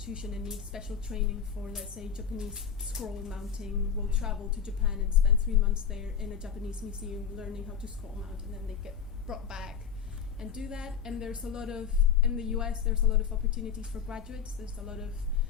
and need special training for, let's say, Japanese scroll mounting will travel to Japan and spend 3 months there in a Japanese museum learning how to scroll mount, and then they get brought back and do that. And there's a lot of, in the US, there's a lot of opportunities for graduates. There's a lot of,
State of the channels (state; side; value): quieter; right; 7.3 dB